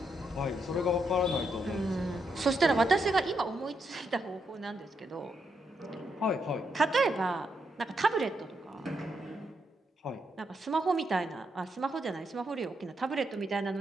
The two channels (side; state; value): both; normal; correlation 0.80